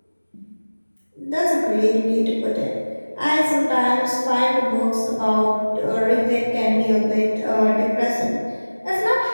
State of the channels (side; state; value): both; inverted; correlation -1.00